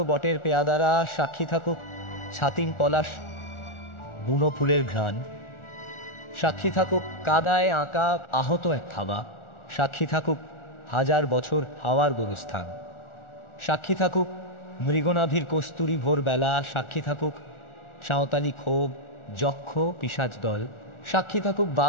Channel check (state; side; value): late; right; 1.4 ms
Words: বটের পেয়াদারা, সাক্ষী থাকুক ছাতিম পলাশ বুনো ফুলের ঘ্রাণ, সাক্ষী থাকুক কাদায় আঁকা আহত এক থাবা, সাক্ষী থাকুক হাজার বছর হাওয়ার গোরস্থান, সাক্ষী থাকুক মৃগনাভির কস্তুরী ভোরবেলা, সাক্ষী থাকুক সাঁওতালি ক্ষোভ যক্ষ পিশাচ দল, সাক্ষী থাকুক